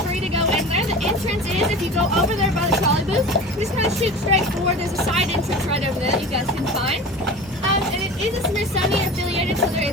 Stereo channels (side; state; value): both; normal; correlation 0.35